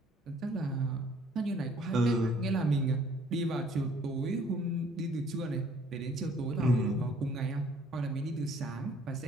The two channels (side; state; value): both; normal; correlation 0.59